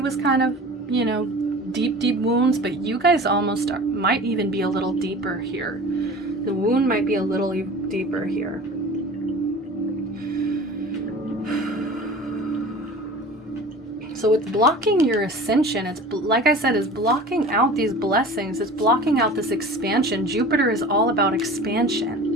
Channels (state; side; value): normal; both; correlation 0.39